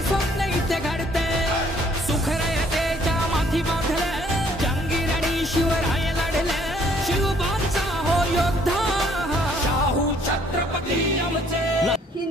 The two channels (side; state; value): both; normal; correlation 0.63